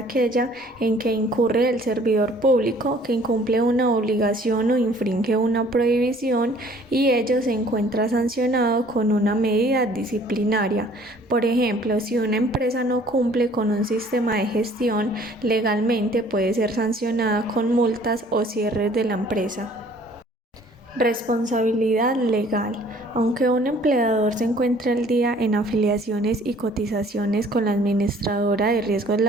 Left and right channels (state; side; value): normal; both; correlation 0.55